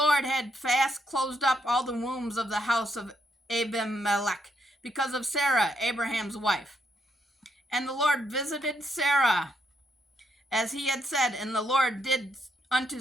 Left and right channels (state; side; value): normal; both; correlation 0.76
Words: had fast closed up all the wombs of the house of Abimelech, because of Sarah, Abraham's wife. And the Lord visited Sarah as he had said, and the Lord did unto